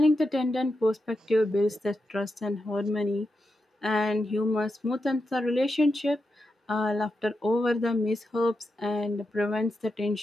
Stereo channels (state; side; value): normal; both; correlation 0.87